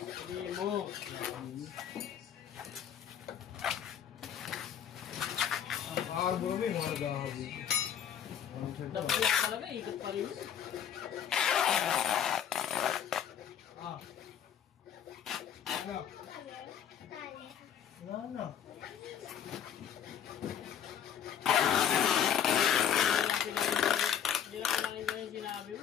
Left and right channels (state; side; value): quieter; right; 9.1 dB